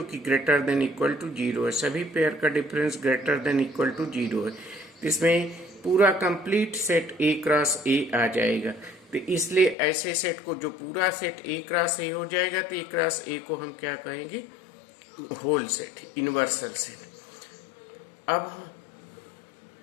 कि ग्रेटर देन इक्वल टू 0 है. सभी पेयर का difference greater than equal to 0 है. इसमें पूरा complete set A cross A आ जाएगा. तो इसलिए ऐसे सेट को, जो पूरा सेट ए क्रॉस ए हो जाएगा, तो ए क्रॉस ए को हम क्या कहेंगे? Whole set, universal set. अब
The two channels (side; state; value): right; drops out; at 9.8 s